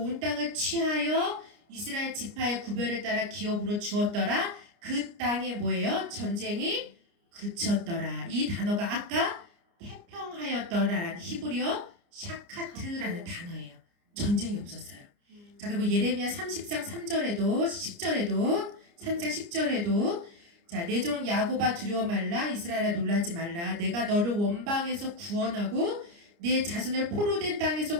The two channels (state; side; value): late; left; 29 ms